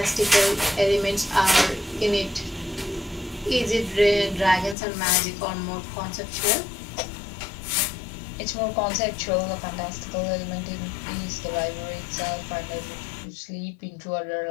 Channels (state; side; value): drops out; right; at 4.8 s